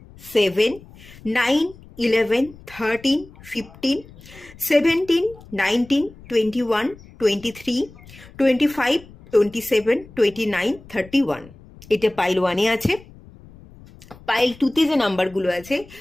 7, 9, 11, 13, 15, 17, 19, 21, 23, 25, 27, 29, 31। এটা পাইল ওয়ানে আছে। পাইল টুতে যে নাম্বারগুলো আছে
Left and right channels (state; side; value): noise; left; rumble, 21 dB below the sound